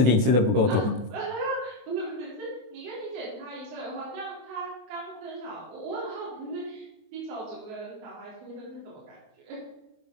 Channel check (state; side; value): late; left; 23 ms